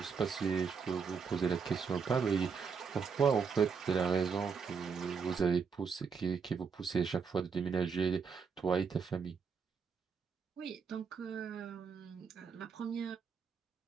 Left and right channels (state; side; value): quieter; left; 5.9 dB